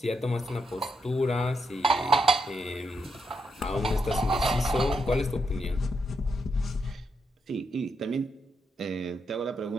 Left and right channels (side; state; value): both; normal; correlation 0.81